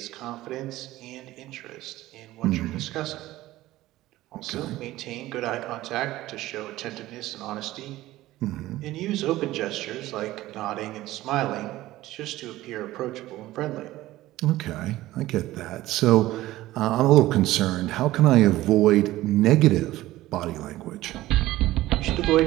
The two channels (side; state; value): left; quieter; 16.4 dB